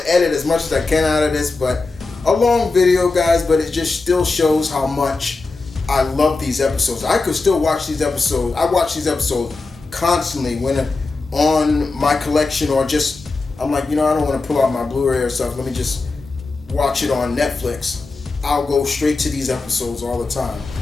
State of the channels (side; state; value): right; quieter; 3.7 dB